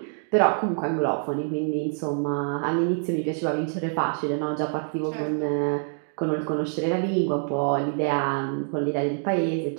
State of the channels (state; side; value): silent; left; 61 dB below the other